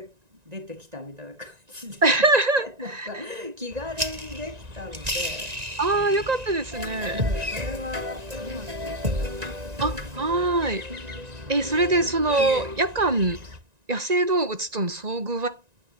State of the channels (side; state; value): left; late; 1.9 ms